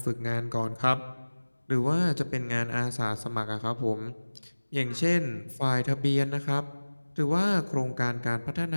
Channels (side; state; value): both; inverted; correlation -1.00